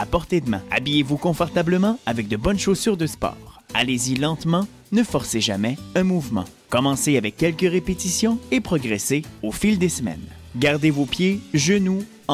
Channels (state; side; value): identical; both; correlation 1.00